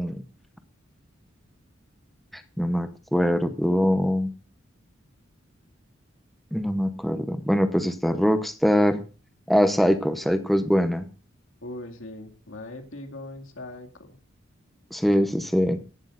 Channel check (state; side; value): normal; both; correlation 0.95